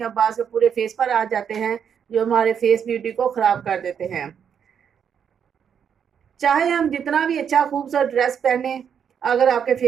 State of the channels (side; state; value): left; quieter; 7.8 dB